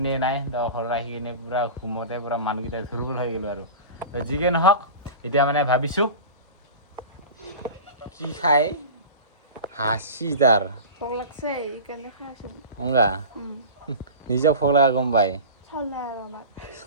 নাই। তো ঘৰত আহি কিনে পূৰা ঘুমতে পূৰা মানুহকেইটা দুৰ্বল হৈ গ'লোঁ আৰু। তো যিকে নহওক, এতিয়া মানে ভাবিছোঁ কি খাই হাসি তাৰ ভোক লাগছে এইকাৰণে খাই আছোঁ। অংগা নিজক ভোক লগা গম পায়। চাউল নাই আৰু আমাৰ।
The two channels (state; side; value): inverted; both; correlation -0.33